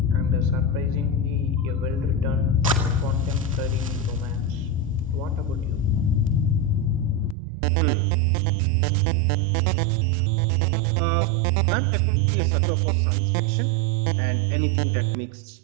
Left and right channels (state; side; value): drops out; left; at 7.4 s